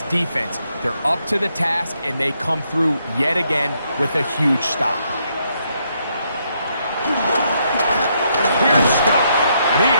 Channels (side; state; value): both; inverted; correlation -0.75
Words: defense, they're up to the task, and they come through yet again with a huge stop. Here's Scott, and he